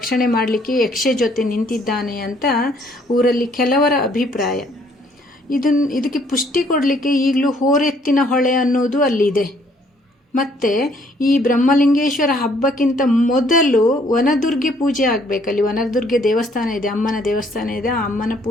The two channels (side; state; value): both; normal; correlation 0.64